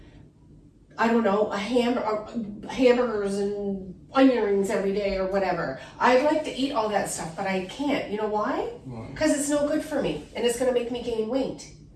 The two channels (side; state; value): both; identical; correlation 1.00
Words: I don't know, hamburgers and onion rings every day or whatever. I'd like to eat all that stuff, but I can't. You know why? Because it's no good for me and it's going to make me gain weight.